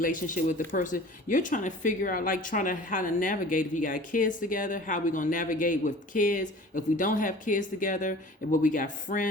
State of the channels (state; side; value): normal; both; correlation 0.43